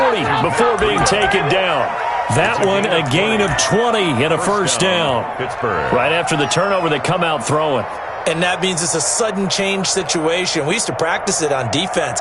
before being taken down. That one a gain of 20 and a 1st down. Pittsburgh. Right after the turnover, they come out throwing. And that means it's a sudden change situation. We used to practice it on defense.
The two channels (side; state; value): both; identical; correlation 1.00